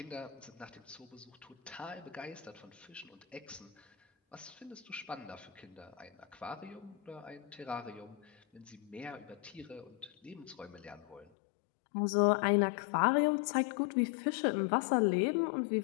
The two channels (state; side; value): drops out; right; at 11.3 s